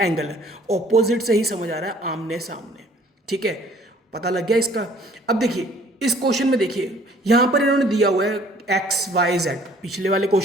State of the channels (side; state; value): both; normal; correlation 0.56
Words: है। ऑपोजिट से ही समझ आ रहा है आमने सामने, ठीक है, पता लग गया इसका। अब देखिए इस क्वेश्चन में देखिए यहाँ पर इन्होंने दिया हुआ है एक्स वाई जेड। पिछले वाले